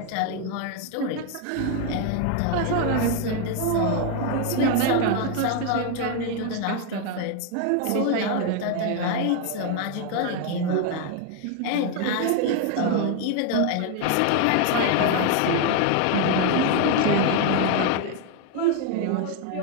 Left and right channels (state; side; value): different; both; correlation 0.01